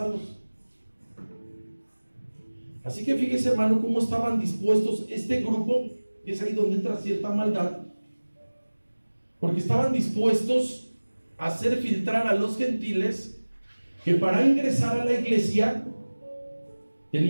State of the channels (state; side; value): inverted; both; correlation -1.00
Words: Así que fíjese, hermano, cómo estaban dispuestos este grupo, y es ahí donde entra cierta maldad, porque estaban dispuestos a hacer filtrar a los gentiles que para ingresar a la iglesia